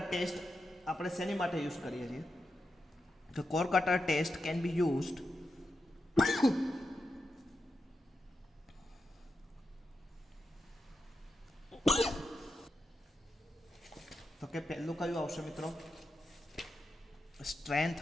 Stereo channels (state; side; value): normal; both; correlation 0.88